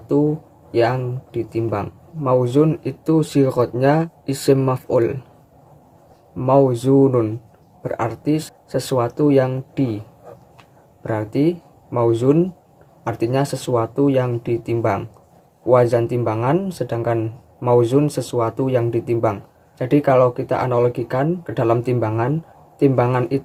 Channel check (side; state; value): both; identical; correlation 1.00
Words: yang ditimbang. Mauzun itu sighotnya isim maf'ul. Mauzunun berarti sesuatu yang berarti mauzun artinya sesuatu yang ditimbang. Wazan timbangan, sedangkan mauzun sesuatu yang ditimbang. Jadi kalau kita analogikan ke dalam timbangan, timbangan